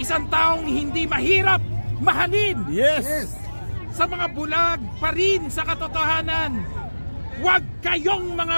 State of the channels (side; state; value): both; inverted; correlation -1.00